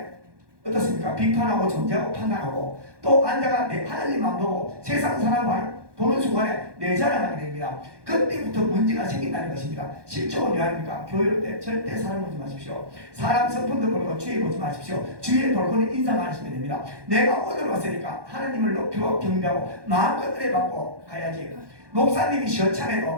어떻습니까? 비판하고 정죄하고 판단하고 또 앉아가 하나님 안 보고 세상 사람 보는 순간에 내 자랑하게 됩니다. 그때부터 문제가 생긴다는 것입니다. 실종은 왜 합니까? 교회 때 절대 사람 보지 마십시오. 사람 성품도 보고 주의 보지 마십시오. 주의 볼거는 인사만 하시면 됩니다. 내가 오늘 왔으니까 하나님을 높이고 경배하고 마음껏 은혜받고 가야지. 목사님이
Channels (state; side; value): late; left; 1.2 ms